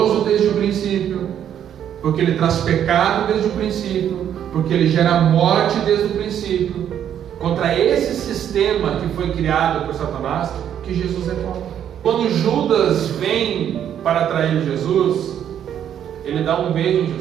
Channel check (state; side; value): quieter; left; 9.7 dB